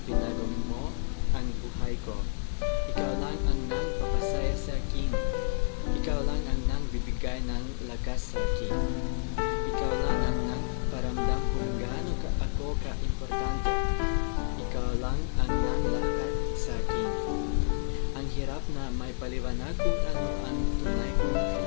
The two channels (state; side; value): silent; right; digital silence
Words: binago mo ang buhay ko. Ikaw lang ang nagpapasaya sa akin. Ikaw lang ang nagbibigay ng lakas sa akin. Ikaw lang ang nagparamdam kung gaano ako ka-importante. Ikaw lang ang nanglakat sa akin. Ang hirap na may paliwanag kung ano ang tunay kong